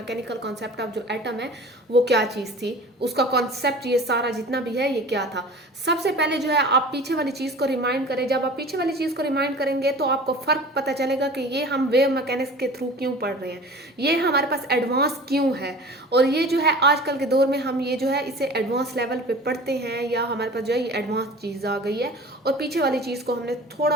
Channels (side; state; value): both; normal; correlation 0.40